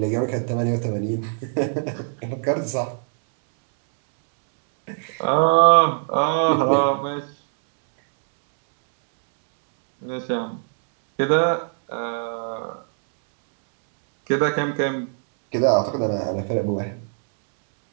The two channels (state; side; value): silent; left; 64 dB below the other